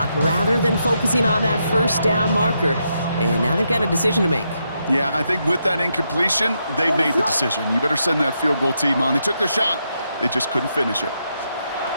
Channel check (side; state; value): both; inverted; correlation -0.81